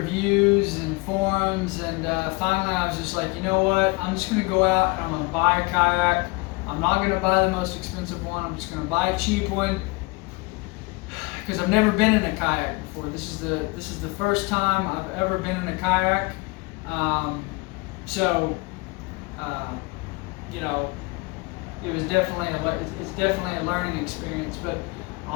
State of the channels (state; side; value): quieter; right; 26.5 dB